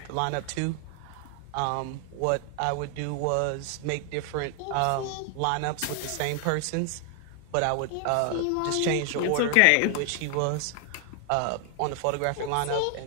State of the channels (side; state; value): both; different; correlation 0.00